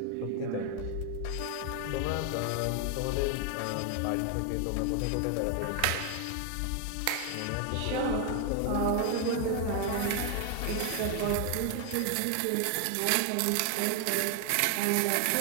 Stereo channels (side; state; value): both; different; correlation 0.00